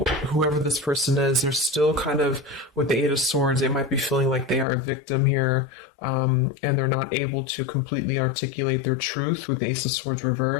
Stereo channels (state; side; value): drops out; right; at 4.7 s